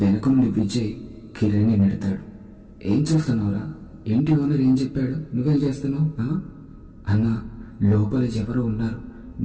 వెనక నుండి విజయ్ కిరణ్ని నెడతాడు. ఏం చూస్తున్నావురా, ఇంటి ఓనర్ ఏం చెప్పాడు, నువ్వేం చేస్తున్నావు అన్నా? లోపల ఎవరో ఉన్నారు,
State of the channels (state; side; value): identical; both; correlation 1.00